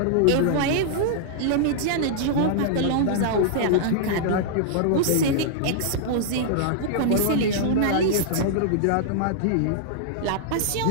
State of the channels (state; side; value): different; both; correlation -0.02